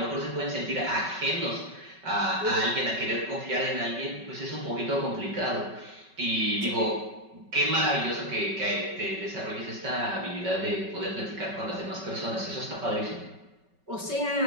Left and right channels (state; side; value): late; left; 5.3 ms